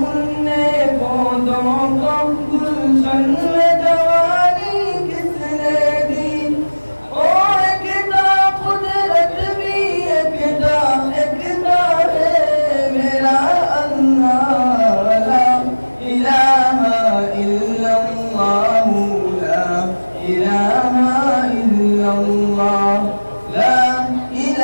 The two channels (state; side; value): inverted; both; correlation -1.00